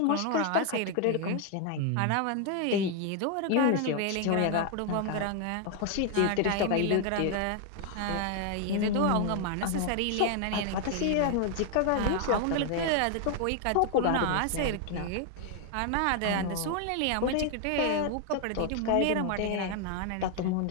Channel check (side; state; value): both; different; correlation 0.00